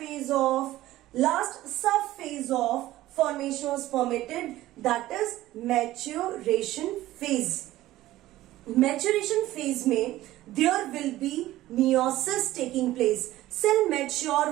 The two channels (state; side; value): quieter; left; 15.7 dB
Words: last sub phase of formation of spermatid, that is maturation phase. Maturation phase में there will be meiosis taking place. Cell mature